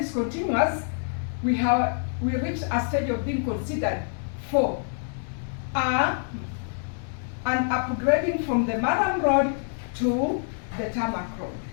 continuous, we reached a stage of being considered for an upgrading from the Murram road to the tarmac road.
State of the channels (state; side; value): silent; right; digital silence